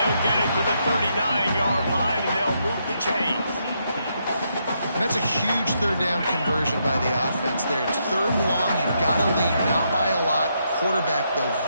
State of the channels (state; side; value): inverted; both; correlation -0.78